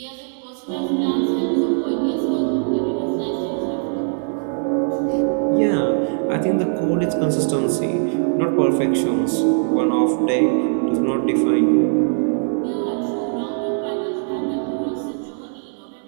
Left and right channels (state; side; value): silent; left; 58 dB below the other